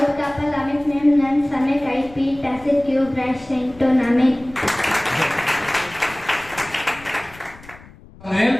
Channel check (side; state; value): left; noise; rumble, 21 dB below the sound